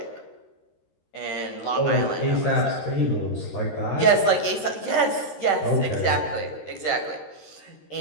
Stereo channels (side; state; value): right; late; 13 ms